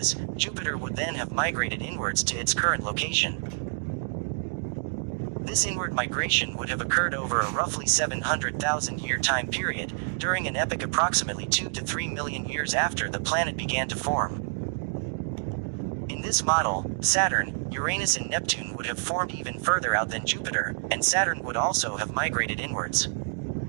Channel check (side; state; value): left; silent; digital silence